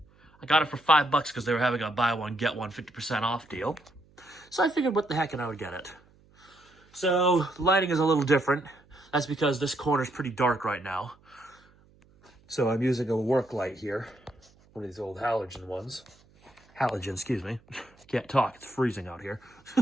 got it for $5 because they were having a buy one, get one 50% off deal. So I figured what the heck and I would get it. So the lighting is a little different. That's because this corner is pretty dark right now. So I'm using a work light here, one of these old halogen ones. Halogen, excuse me. Can't talk, it's freezing out here.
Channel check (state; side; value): noise; right; hum, 30 dB below the sound